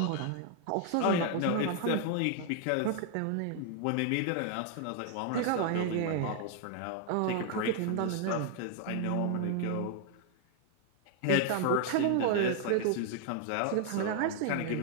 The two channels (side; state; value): both; different; correlation 0.00